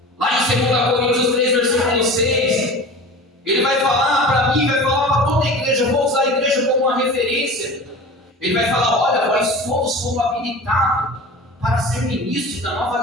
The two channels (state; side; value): normal; both; correlation 0.36